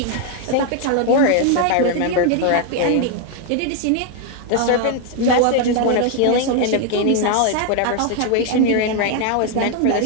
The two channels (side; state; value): both; different; correlation 0.00